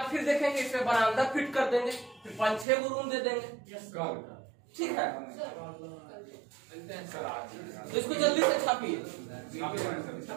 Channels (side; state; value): left; drops out; at 2.7 s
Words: फिर देखेंगे, इसमें बरामदा फिट कर देंगे, फिर 5-6 गो रूम दे देंगे, ठीक है। तो इसको जल्दी से छापिए।